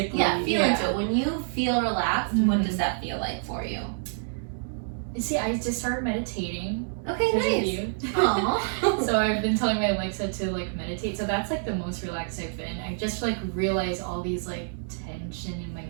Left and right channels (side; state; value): left; silent; digital silence